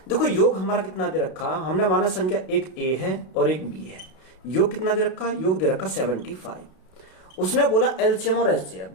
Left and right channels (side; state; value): right; late; 32 ms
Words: देखो योग हमारा कितना दे रखा? हमने माना संख्या एक a है और एक b है। योग कितना दे रखा? योग दे रखा 75। उसने बोला एलसीएम और एचसीएफ।